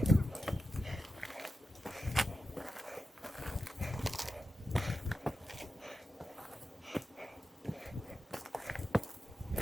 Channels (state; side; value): normal; both; correlation 0.90